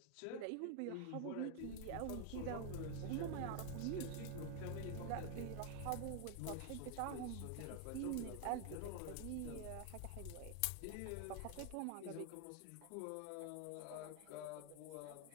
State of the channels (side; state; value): both; different; correlation 0.00